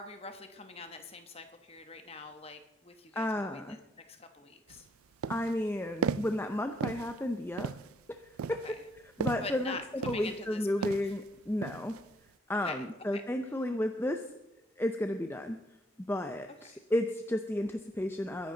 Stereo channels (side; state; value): both; normal; correlation 0.69